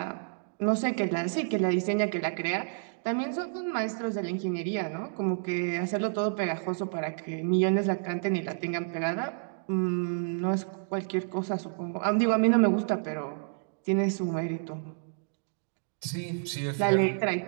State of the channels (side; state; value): left; silent; digital silence